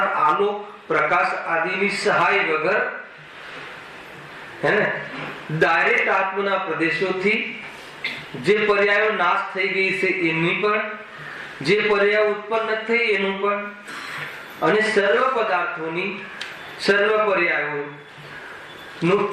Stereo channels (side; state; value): both; identical; correlation 1.00